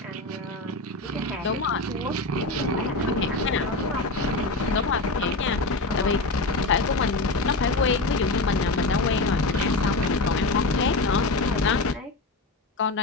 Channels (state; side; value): quieter; right; 3.2 dB